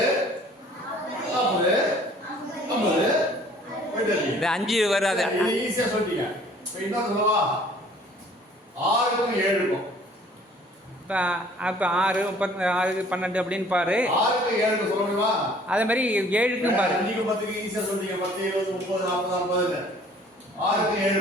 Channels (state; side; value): normal; both; correlation 0.54